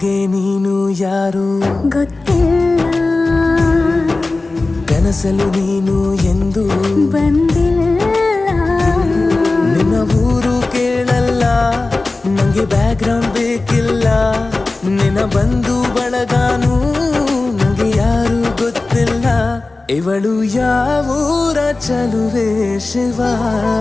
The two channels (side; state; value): right; quieter; 3.3 dB